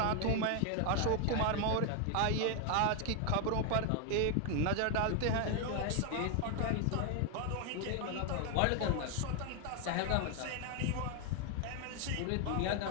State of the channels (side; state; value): both; different; correlation 0.01